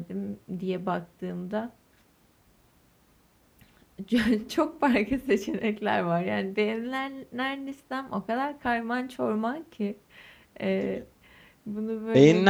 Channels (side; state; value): both; identical; correlation 1.00